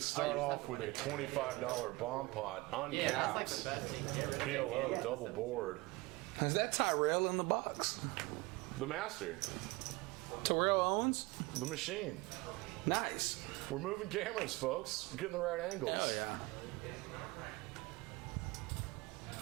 start off with a $25 bomb pot, uncapped, PLO, double board. Is that Tyrell in the box? The master, Terrell Owens? the machine. Nice. We're moving cameras, folks. We're getting the right angles. Hell yeah.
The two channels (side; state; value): left; quieter; 22.4 dB